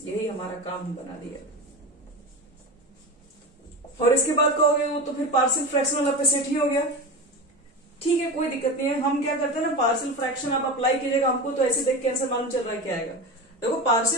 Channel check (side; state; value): both; normal; correlation 0.25